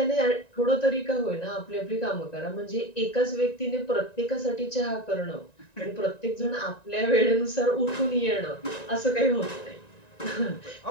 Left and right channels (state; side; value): late; right; 1.9 ms